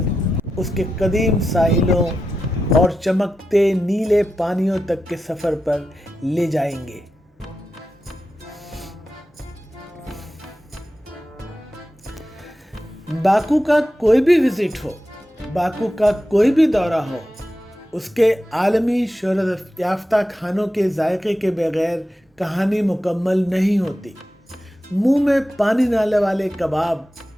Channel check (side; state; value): both; normal; correlation 0.90